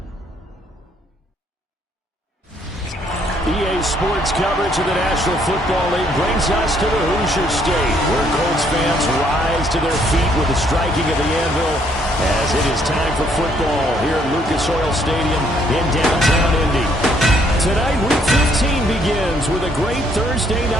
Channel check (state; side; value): normal; both; correlation 0.67